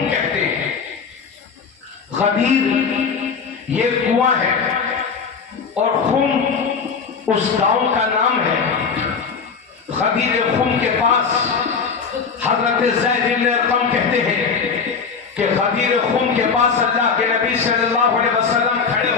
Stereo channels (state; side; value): quieter; right; 5.6 dB